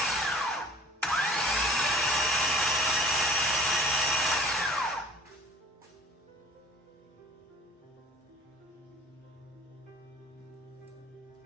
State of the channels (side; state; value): both; normal; correlation 0.48